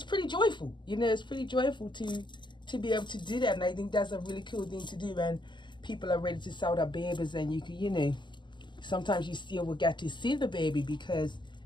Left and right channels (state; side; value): late; right; 0.22 ms